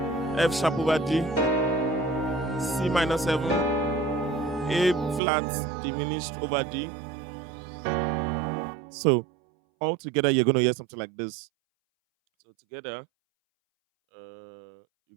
F sharp over D, C minor seven, A flat diminished over D. So all together, you're gonna hear something like this. So together,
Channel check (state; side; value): drops out; left; at 5.2 s